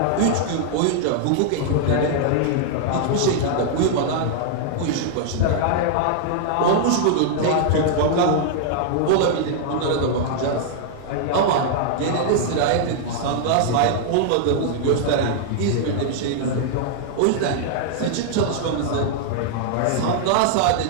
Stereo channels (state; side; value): different; both; correlation -0.01